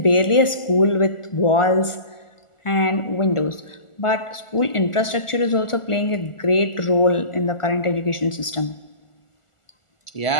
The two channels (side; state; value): right; late; 1.4 ms